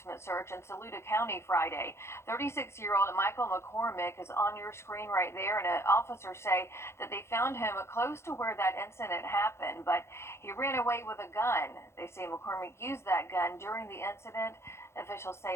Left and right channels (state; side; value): late; right; 0.13 ms